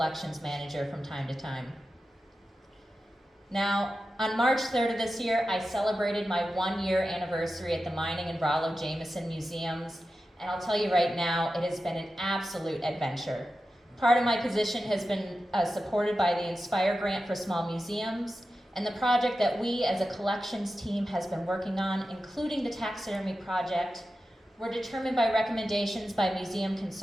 manager from time to time. Now, on March 3rd of this year, I celebrated my 1-year anniversary at the Mining Rollo Jamison Museums, and I'll tell you right now, it has been an absolute adventure. Part of my position has been supported by the Inspire Grant for Small Museums, and the project that we as a collections team has been working on, including the taxidermy project, were determined by recommendations by Museum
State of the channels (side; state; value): both; normal; correlation 0.92